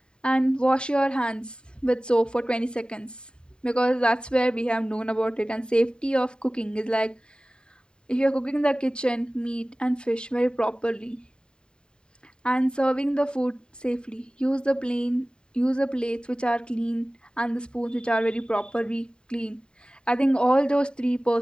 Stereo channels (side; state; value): right; late; 0.049 ms